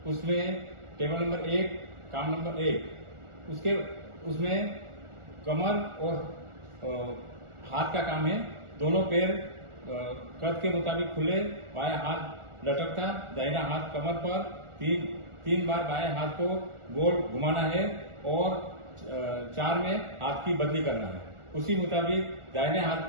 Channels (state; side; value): late; left; 1.4 ms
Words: उसमें टेबल नंबर 1 काम नंबर 1 उसमें कमर और हाथ का काम है। दोनों पैर कद के मुताबिक खुले, बायां हाथ लटकता, दाहिना हाथ कमर पर, तीन बार बाएं हाथ को गोल घुमाना है और 4 में हाथ की बदली करना है। उसी मुताबिक दाहिने हाथ